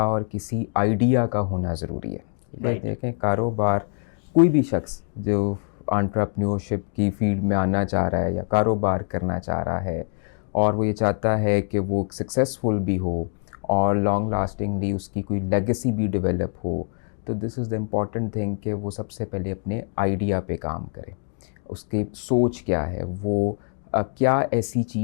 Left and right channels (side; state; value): right; silent; digital silence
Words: और किसी आइडिया का होना ज़रूरी है। Right. देखें, कारोबार कोई भी शख्स जो एंटरप्रेन्योरशिप की फील्ड में आना चाह रहा है या कारोबार करना चाह रहा है और वो ये चाहता है कि वो सक्सेसफुल भी हो और लॉन्ग लास्टिंगली उसकी कोई लेगेसी भी डेवलप हो, तो this is the important thing कि वो सबसे पहले अपने आइडिया पे काम करे। उसकी सोच क्या है, वो क्या ऐसी